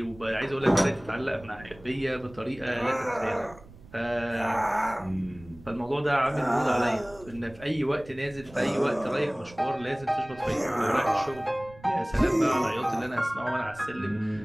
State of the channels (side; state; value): right; noise; rumble, 21 dB below the sound